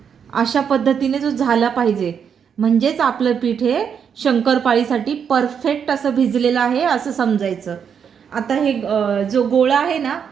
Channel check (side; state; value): left; quieter; 7.4 dB